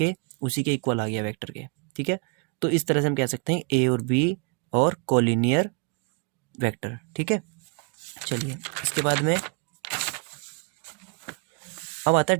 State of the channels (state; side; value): quieter; left; 35.3 dB